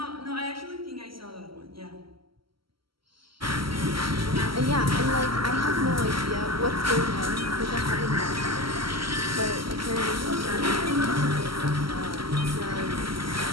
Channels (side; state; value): left; late; 0.74 ms